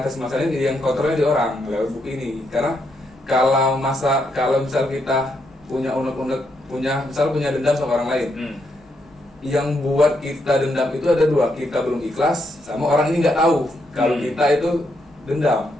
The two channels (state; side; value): normal; both; correlation 0.78